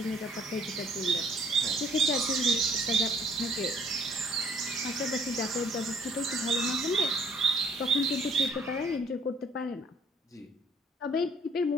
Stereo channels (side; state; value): both; normal; correlation 0.61